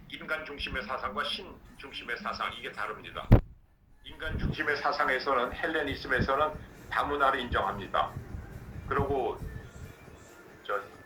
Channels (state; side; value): identical; both; correlation 1.00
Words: 인간 중심의 사상과 신 중심의 사상, 이게 다릅니다. 인간 중심의 사상에서는 헬레니즘에서는 다문화를 인정합니다. 그리고